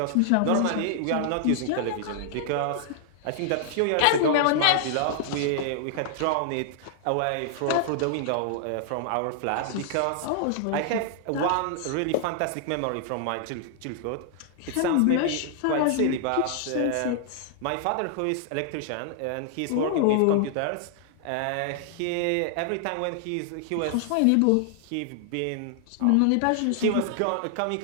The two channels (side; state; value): both; different; correlation -0.01